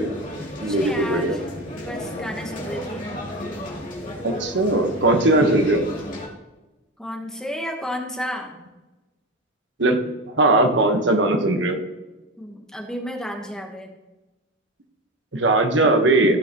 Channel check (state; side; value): normal; both; correlation 0.21